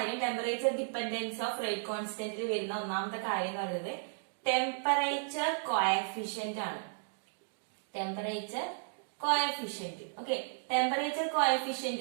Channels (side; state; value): left; silent; digital silence